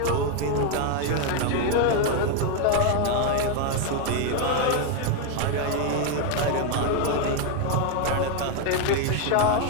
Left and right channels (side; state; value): both; different; correlation 0.01